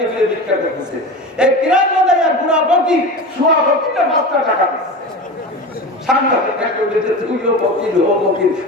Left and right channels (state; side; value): normal; both; correlation 0.29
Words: ফিরে ভিক্ষা করতেছে। এই কিরাত বাঁধায় আর বুড়া ফকির শোয়া ফকিরটা 5 টাকা দিচ্ছে। সাংঘাতিক একটা উঠেছে, তুইও ফকির ও ফকির,